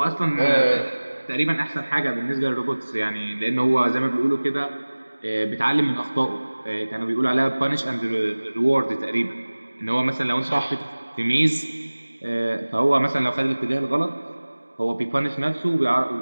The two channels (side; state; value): both; inverted; correlation -1.00